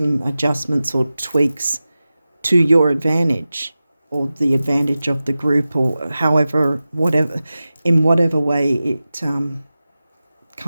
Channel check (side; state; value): both; inverted; correlation -0.95